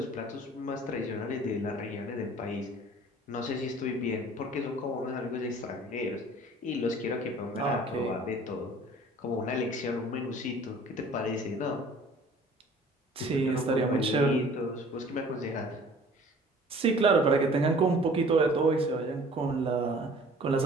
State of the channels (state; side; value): normal; both; correlation 0.50